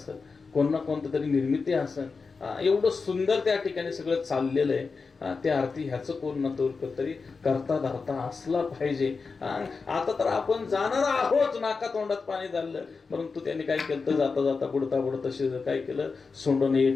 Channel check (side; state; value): right; quieter; 4.7 dB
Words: कोण ना कोणतं तरी निर्मिती असेल. एवढं सुंदर त्या ठिकाणी सगळं चाललेलं आहे. त्या अर्थी ह्याचं कोण ना तरी करता धरता असला पाहिजे. आता तर आपण जाणार आहोत, नाका तोंडात पाणी झालं, परंतु त्यांनी काय केलं तर जाता जाता बुडता काय केलं, सोंडून